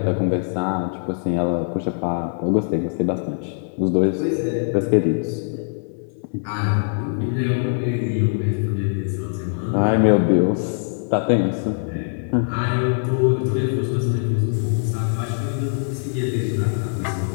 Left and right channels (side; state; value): right; silent; 64 dB below the other